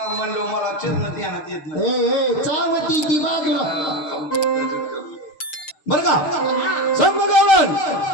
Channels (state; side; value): late; right; 6.7 ms